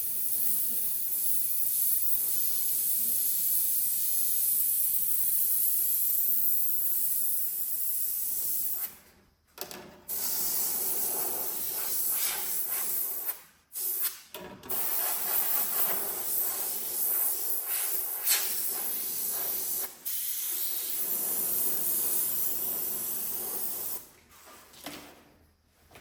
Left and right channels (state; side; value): identical; both; correlation 1.00